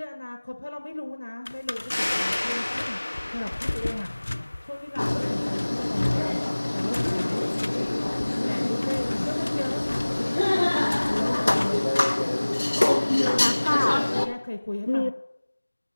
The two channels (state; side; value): inverted; both; correlation -1.00